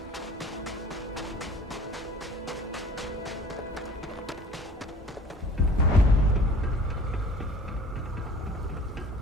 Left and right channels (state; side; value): normal; both; correlation 0.47